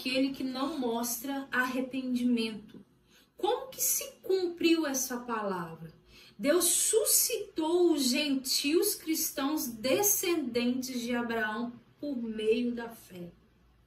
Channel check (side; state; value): both; identical; correlation 1.00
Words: que não mostra arrependimento. Como que se cumpriu essa palavra? Deus suscitou os gentios cristãos descendentes de Abraão por meio da fé.